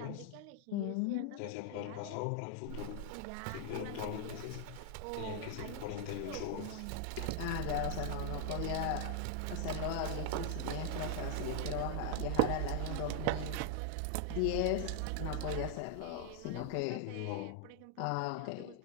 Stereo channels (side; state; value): both; different; correlation -0.01